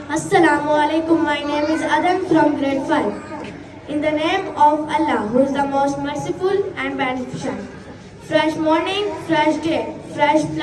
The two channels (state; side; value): identical; both; correlation 1.00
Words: alaikum. My name is Adam from grade 5. In the name of Allah, who is the most merciful and beneficent. Fresh morning, fresh day, fresh